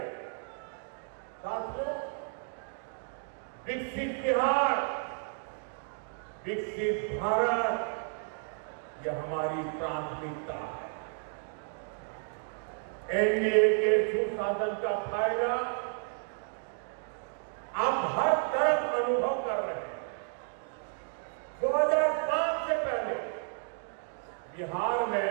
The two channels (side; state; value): left; silent; 56 dB below the other